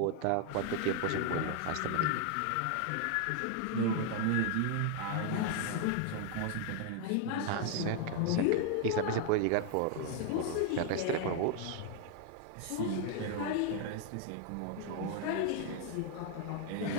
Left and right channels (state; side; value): different; both; correlation 0.00